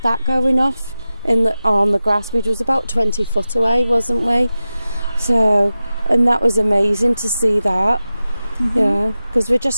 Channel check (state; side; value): inverted; both; correlation -0.95